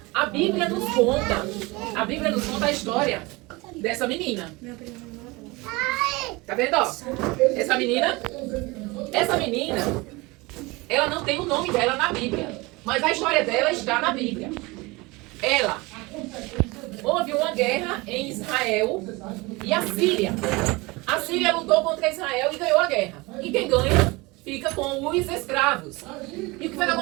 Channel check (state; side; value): quieter; left; 23.8 dB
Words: A Bíblia nos conta a história dessa menina. Tá vendo, ó? Essa menina, ela não tem o nome dela na Bíblia, mas a história dela está na Bíblia. Houve uma guerra em Israel e a Síria. A Síria lutou contra Israel e ganhou a guerra. E quem ganha fica com os escravos. E o que foi que